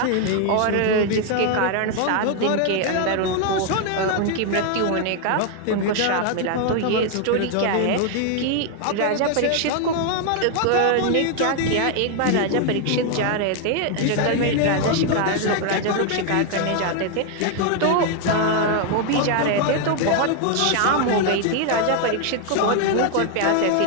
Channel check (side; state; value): both; different; correlation 0.01